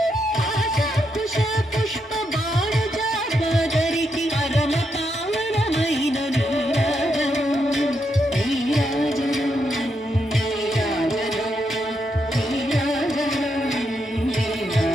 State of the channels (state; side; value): normal; both; correlation 0.81